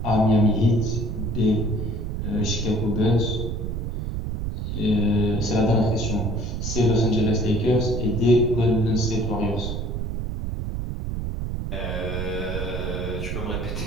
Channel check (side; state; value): right; noise; rumble, 3 dB below the sound